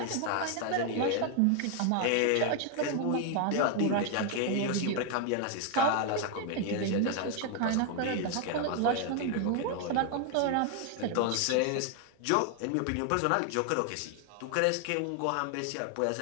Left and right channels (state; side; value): different; both; correlation 0.00